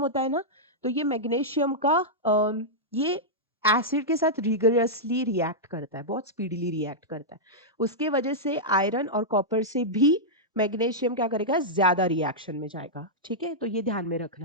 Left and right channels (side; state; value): both; normal; correlation -0.09